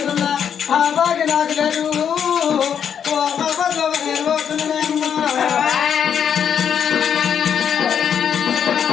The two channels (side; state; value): right; quieter; 8.1 dB